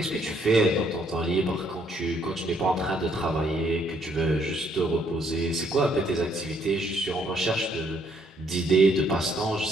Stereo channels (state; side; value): normal; both; correlation 0.69